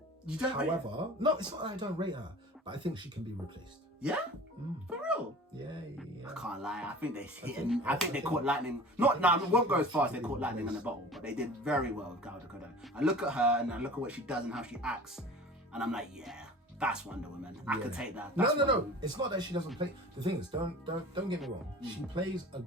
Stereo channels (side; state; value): both; normal; correlation 0.41